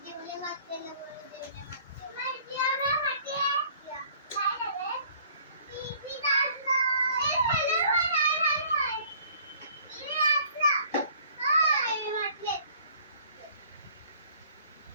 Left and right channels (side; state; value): both; inverted; correlation -0.55